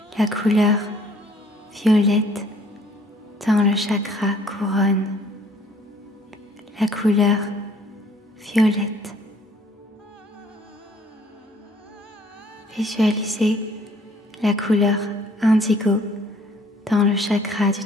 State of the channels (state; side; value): normal; both; correlation 0.59